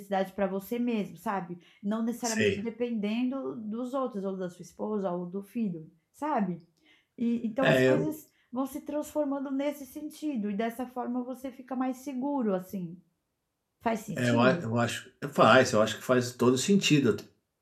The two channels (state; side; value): identical; both; correlation 1.00